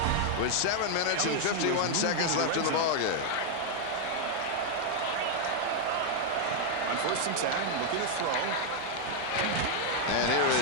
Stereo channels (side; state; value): both; different; correlation 0.00